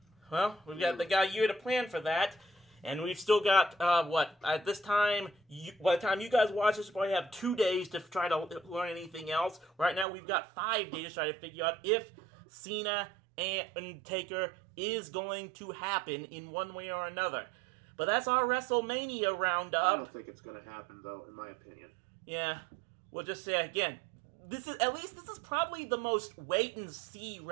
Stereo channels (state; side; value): drops out; left; at 10.1 s